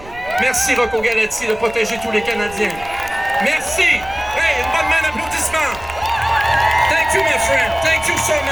Merci, Rocco Galati, de protéger tous les Canadiens. Merci! Hey, une bonne main d'applaudissement! Thank you, my friend. Thank you so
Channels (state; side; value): noise; right; rumble, 18 dB below the sound